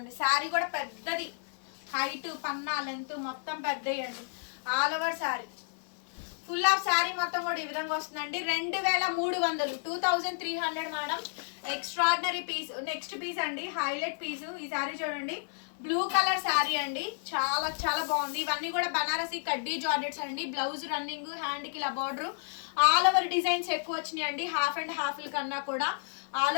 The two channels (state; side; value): silent; right; 57 dB below the other